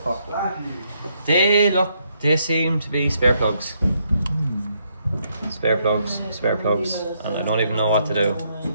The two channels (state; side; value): inverted; both; correlation -0.74